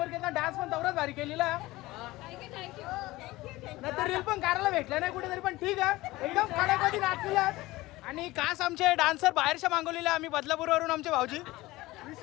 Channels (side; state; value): right; quieter; 19.0 dB